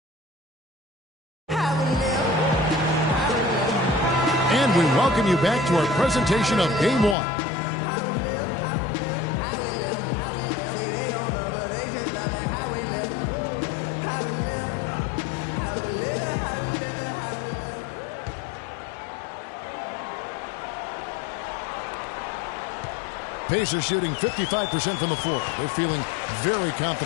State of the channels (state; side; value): drops out; right; at 7.2 s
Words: And we welcome you back to our presentation of Game 1. Pacers shooting 55% from the floor. They're feeling very